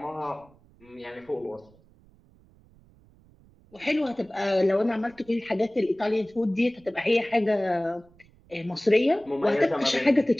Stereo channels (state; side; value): noise; right; rumble, 29 dB below the sound